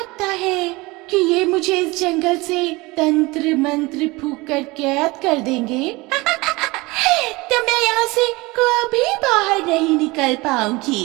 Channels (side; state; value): left; quieter; 22.9 dB